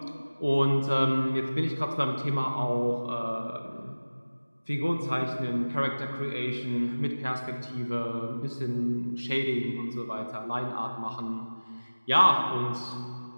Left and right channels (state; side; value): inverted; both; correlation -1.00